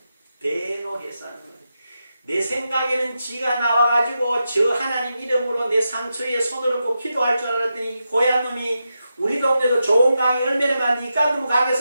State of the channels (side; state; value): both; inverted; correlation -0.88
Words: 대노해서 하는 거예요. 내 생각에는 지가 나와가지고 저 하나님 이름으로 내 상처에 손을 얹고 기도할 줄 알았더니 고얀 놈이 우리 동네도 좋은 강이 얼마나 많은데 이 깐놈